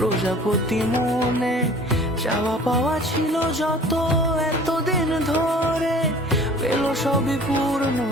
মনে। চাওয়া পাওয়া ছিল যত এতদিন ধরে, পেল সবই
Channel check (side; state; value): both; normal; correlation 0.47